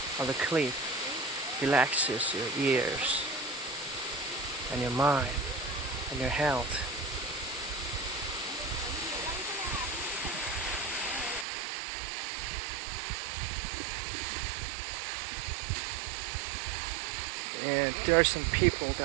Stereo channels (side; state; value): left; drops out; at 11.5 s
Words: of the cliff relaxes your ears and your mind and your health. And there are some people